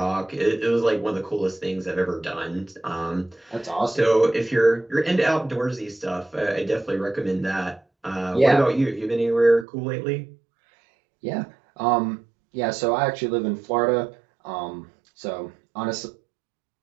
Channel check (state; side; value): drops out; left; at 9.7 s